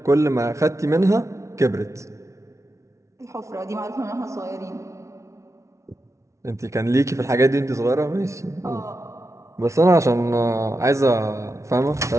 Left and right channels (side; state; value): left; late; 0.14 ms